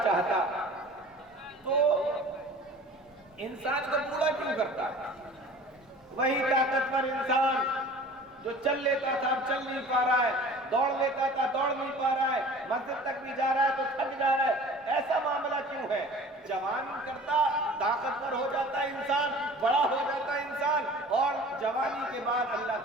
چاہتا تو انسان کو بوڑھا کیوں کرتا؟ وہی طاقتور انسان جو چل لیتا تھا اب چل نہیں پا رہا ہے، دوڑ لیتا تھا دوڑ نہیں پا رہا ہے، مسجد تک بھی جا رہا ہے تو تھک جا رہا ہے، ایسا معاملہ کیوں ہے؟ جوان کرتا، طاقتور ہو جاتا انسان، بڑا ہو جاتا انسان، اور جوانی کے بعد اللہ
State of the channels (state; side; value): normal; both; correlation 0.44